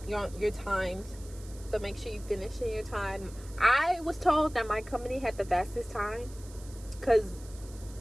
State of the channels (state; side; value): noise; right; hiss, 20 dB below the sound